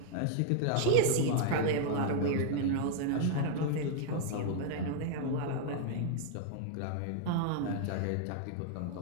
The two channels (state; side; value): different; both; correlation 0.00